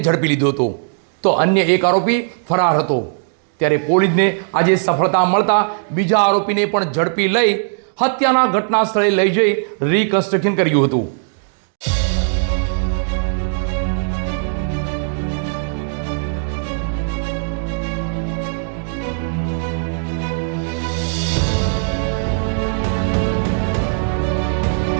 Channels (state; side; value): silent; left; digital silence